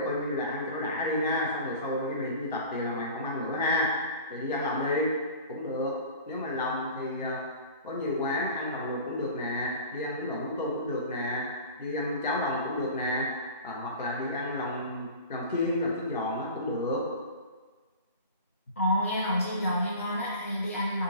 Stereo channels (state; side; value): inverted; both; correlation -0.37